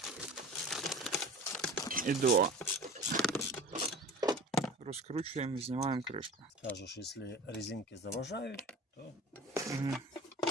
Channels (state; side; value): normal; both; correlation 0.39